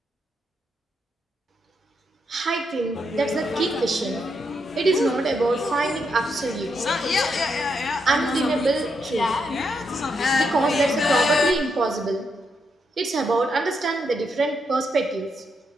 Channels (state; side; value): normal; both; correlation 0.80